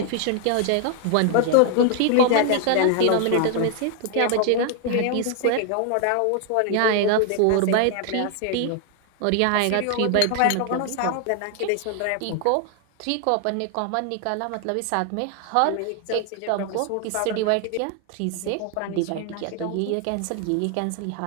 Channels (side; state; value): both; different; correlation 0.00